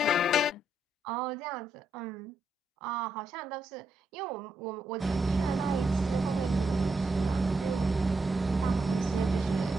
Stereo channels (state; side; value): normal; both; correlation 0.80